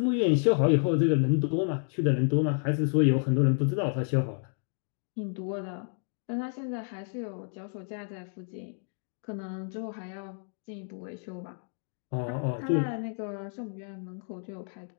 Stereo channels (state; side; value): silent; right; 58 dB below the other